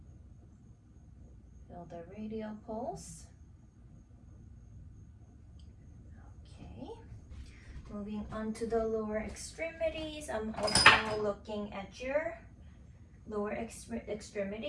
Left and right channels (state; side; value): identical; both; correlation 1.00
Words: Feel the radial pulse. Okay. Moving on to the lower extremities. I'm also looking at your lower